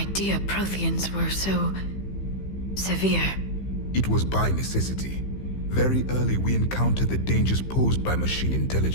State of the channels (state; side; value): late; right; 15 ms